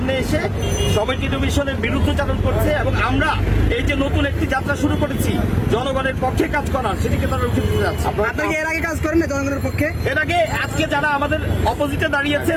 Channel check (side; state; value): both; identical; correlation 1.00